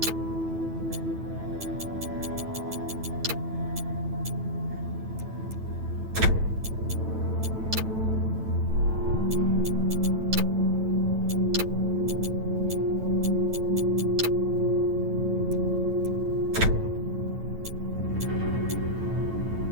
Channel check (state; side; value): late; left; 9.1 ms